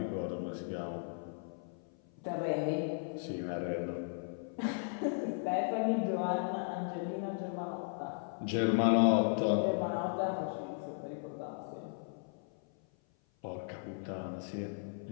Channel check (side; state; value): right; silent; 54 dB below the other